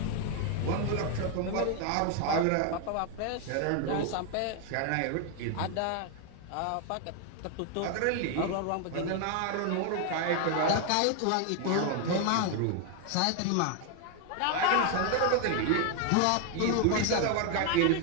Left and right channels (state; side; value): different; both; correlation 0.01